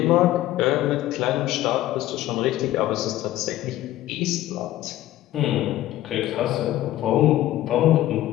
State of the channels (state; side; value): quieter; right; 14.5 dB